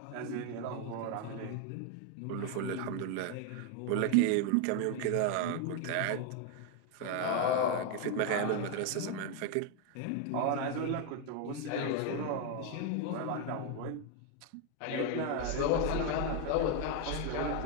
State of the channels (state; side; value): different; both; correlation 0.01